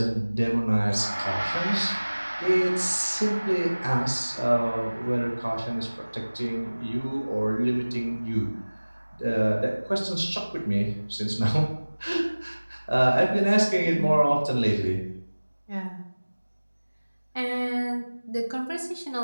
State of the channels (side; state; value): both; inverted; correlation -1.00